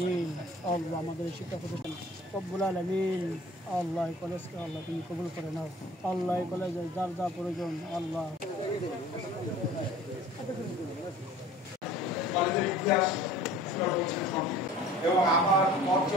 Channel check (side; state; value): both; normal; correlation 0.47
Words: আল্লাহ আমাদের শিক্ষা প্রতিষ্ঠান রব্বুল আলামিন আল্লাহ কলেজকে আল্লাহ তুমি কবুল করে নাও। আল্লাহ কলেজের যার যা প্রয়োজন আল্লাহ কলেজের ইতিহাস এবং আমার মঞ্চ